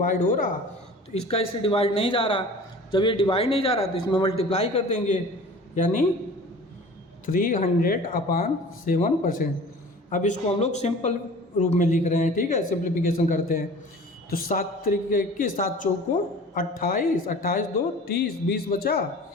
हो रहा, तो इसका इससे डिवाइड नहीं जा रहा। जब ये डिवाइड नहीं जा रहा तो इसमें मल्टीप्लाई कर देंगे, यानी 300/7%। अब इसको हम लोग सिंपल रूप में लिख रहे हैं, ठीक है, सिंप्लीफिकेशन करते हैं। तो 7 तरीके की 7 चौको 28, 28 2 30, 20 बचा,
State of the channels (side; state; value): both; normal; correlation 0.42